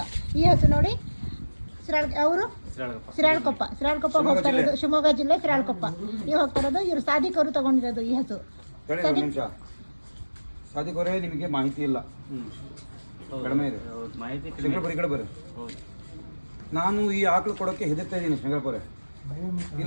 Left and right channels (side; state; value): both; inverted; correlation -1.00